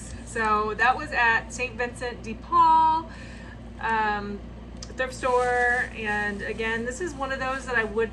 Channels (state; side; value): identical; both; correlation 1.00